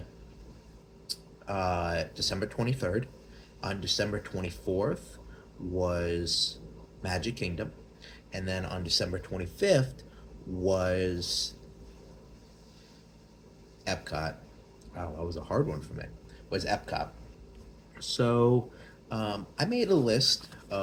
December 23rd. On December 24th was Magic Kingdom. And then on December 25th was Epcot. Wow, that was a hard one for me. Was Epcot. So I made a list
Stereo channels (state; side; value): identical; both; correlation 1.00